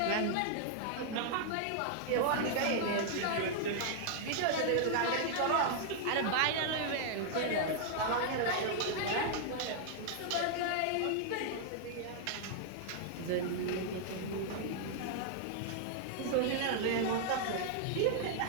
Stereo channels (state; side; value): different; both; correlation -0.01